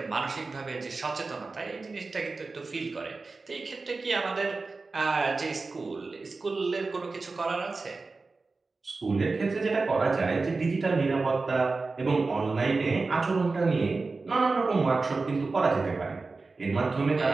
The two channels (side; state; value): left; quieter; 3.9 dB